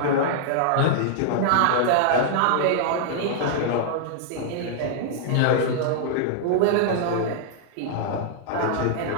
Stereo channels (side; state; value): both; different; correlation -0.01